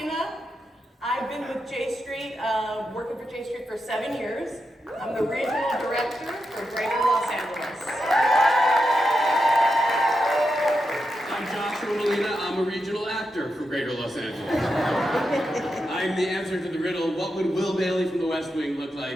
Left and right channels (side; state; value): both; normal; correlation 0.87